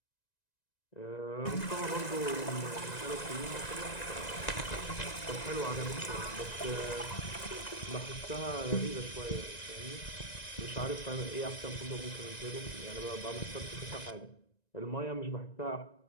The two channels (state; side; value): late; right; 1.9 ms